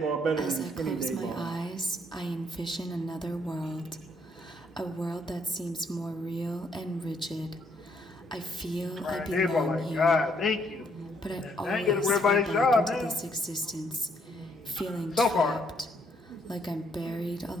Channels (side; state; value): both; normal; correlation 0.70